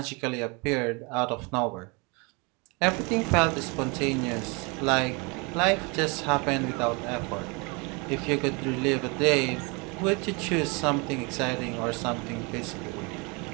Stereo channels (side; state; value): left; quieter; 29.6 dB